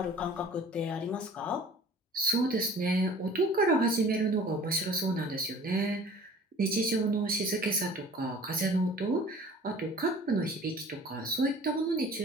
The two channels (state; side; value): normal; both; correlation 0.46